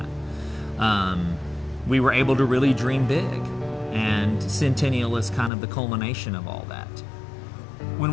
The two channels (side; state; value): right; drops out; at 5.5 s